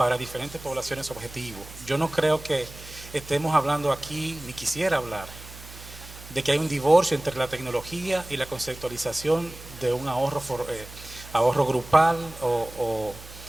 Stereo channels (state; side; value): noise; right; hum, 16 dB below the sound